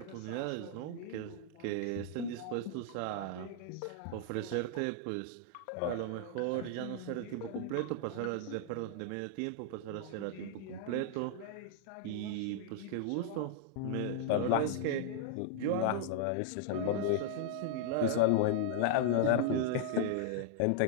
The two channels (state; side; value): different; both; correlation -0.01